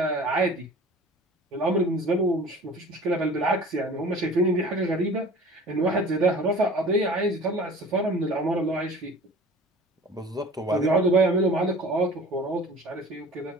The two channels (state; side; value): normal; both; correlation 0.43